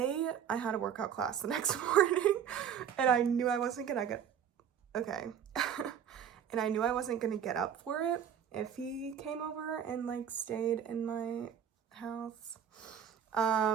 had a workout class the next morning, and I knew I wasn't gonna get, okay, and I knew I wasn't gonna get up for it if he came over and like stayed in my house.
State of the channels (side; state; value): left; quieter; 8.6 dB